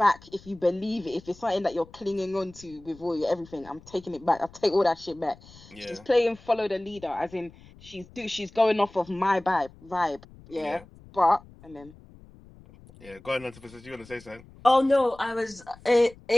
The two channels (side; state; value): left; noise; rumble, 23 dB below the sound